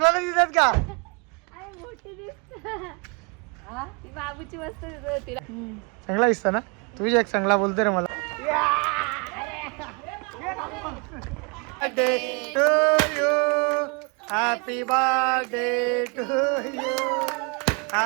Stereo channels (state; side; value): quieter; left; 32.3 dB